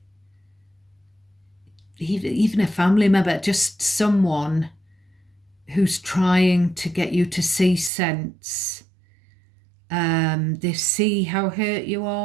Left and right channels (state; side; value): drops out; left; at 7.9 s